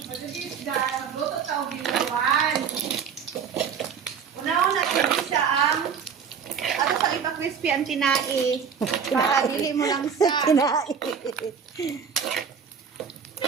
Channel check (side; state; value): left; quieter; 6.8 dB